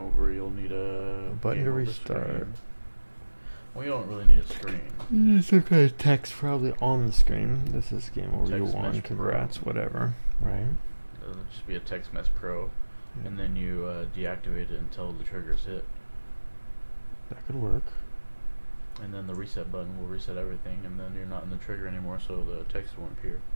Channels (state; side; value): inverted; both; correlation -1.00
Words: over, you'll need a button game to over restart. screen. Well, you don't really need a screen. Some kind of text probably on the screen. This is game over. You Text won. message pro. Congrats. Whatever. Right. It'll just be a text mess pro, Yeah. and then you deactivate it until the trigger's hit, That could work. and then the reset button will reset everything, and then you're not in the trigger anymore, so the text won't appear.